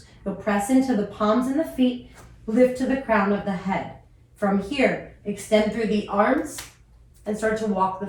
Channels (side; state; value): both; identical; correlation 1.00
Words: you'll press into the palms and the feet, lift to the crown of the head. From here, extend through the arms and start to walk